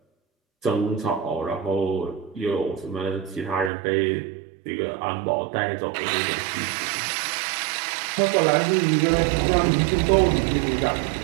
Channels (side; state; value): left; drops out; at 3.7 s